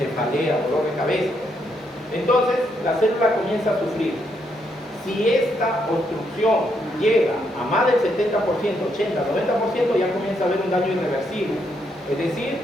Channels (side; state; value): both; normal; correlation 0.77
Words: dolor de cabeza. Entonces, la célula comienza a sufrir. Si esta obstrucción llega a más del 70%, 80, 90%, ya comienza a haber un daño irreversible. Es decir,